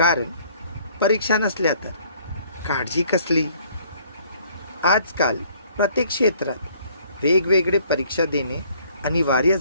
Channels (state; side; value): inverted; both; correlation -0.60